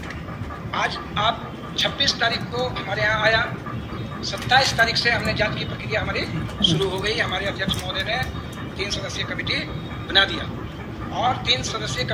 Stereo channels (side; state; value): both; identical; correlation 1.00